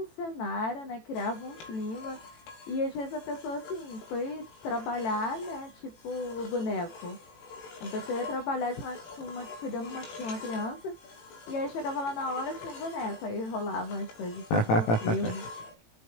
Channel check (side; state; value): right; late; 18 ms